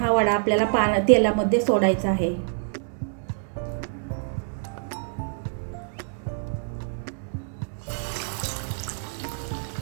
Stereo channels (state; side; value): silent; left; 61 dB below the other